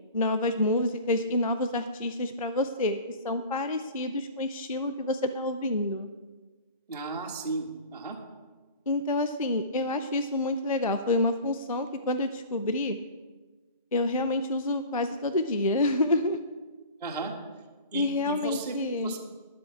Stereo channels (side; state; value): both; inverted; correlation -0.38